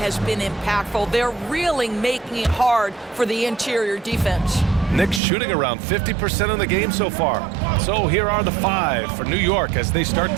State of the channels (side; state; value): left; drops out; at 5.2 s